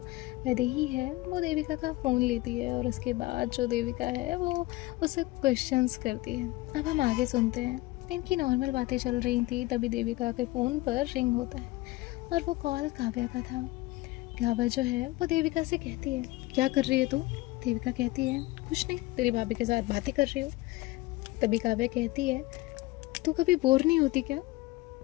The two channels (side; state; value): right; quieter; 19.6 dB